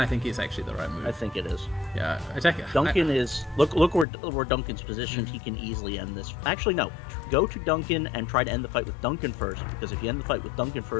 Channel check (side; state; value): right; drops out; at 4.0 s